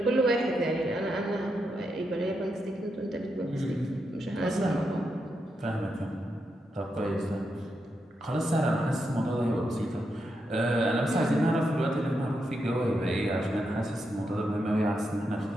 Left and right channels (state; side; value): normal; both; correlation 0.84